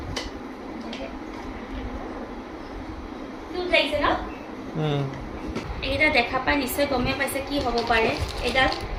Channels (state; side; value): identical; both; correlation 1.00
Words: কিউট লাগিছে ন? এইকেইটা দেখা পাই নিশ্চয় গমেই পাইছে কি হ'ব পাৰে। এইডাল